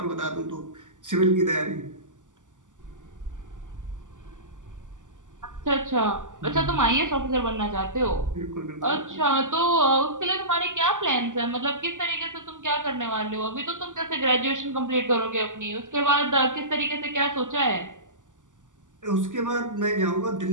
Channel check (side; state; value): left; late; 0.87 ms